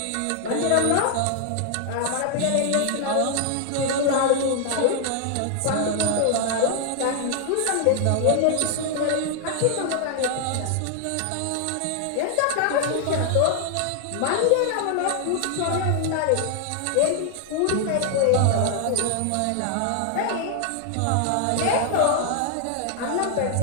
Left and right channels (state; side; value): different; both; correlation 0.00